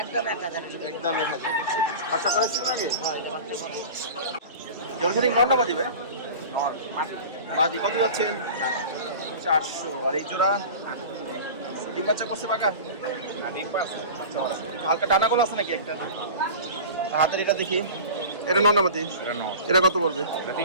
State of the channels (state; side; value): inverted; both; correlation -0.35